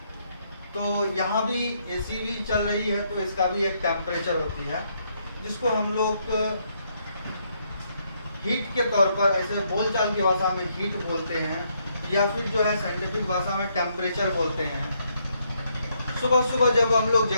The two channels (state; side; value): inverted; both; correlation -0.74